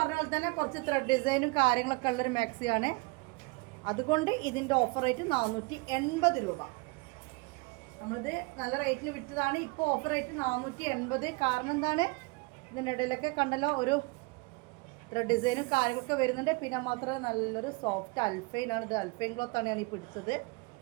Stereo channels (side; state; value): left; quieter; 27.5 dB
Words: പോലെ തന്നെ കുറച്ച് ത്രെഡ് ഡിസൈനും കാര്യങ്ങളൊക്കെ ഉള്ളൊരു മാക്സിയാണ്. അതുകൊണ്ട് ഇതിൻ്റെ ഓഫർ റേറ്റ് 480 രൂപ. നമ്മളിത് നല്ല റേറ്റിന് വിറ്റതാണ്. ഇപ്പോൾ ഓഫർ റേറ്റ് 480. കാരണം എന്താണ്, ഇതിൻ്റെ ഇടയിലൊക്കെ കണ്ടല്ലോ ഒരു ത്രെഡ് ഡിസൈനും കാര്യങ്ങളൊക്കെ വരുന്നുണ്ട്. പിന്നെ മാത്രമേ നല്ലൊരു സോഫ്റ്റ് അൽഫൈനാണ്. ഇത് അൽഫൈൻ ക്ലോത്താണ് ഞാൻ ഈ പിടിച്ചത്.